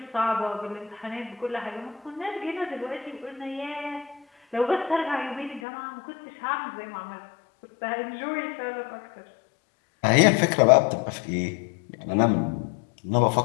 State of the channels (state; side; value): drops out; right; at 5.6 s